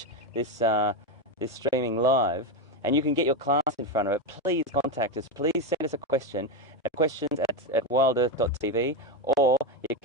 this streaming live, and you can get your class in front of it, please contact us. Please send us a question at questions at WildEarthTV, or you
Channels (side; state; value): both; normal; correlation 0.12